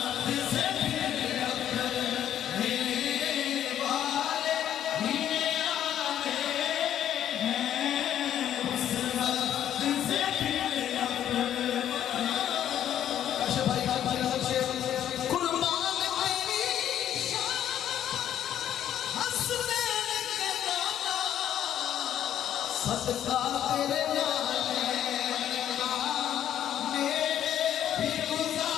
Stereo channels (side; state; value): right; quieter; 10.7 dB